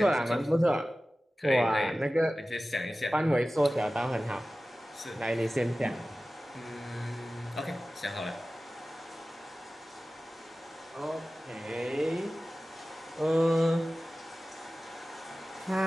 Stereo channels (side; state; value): both; normal; correlation 0.96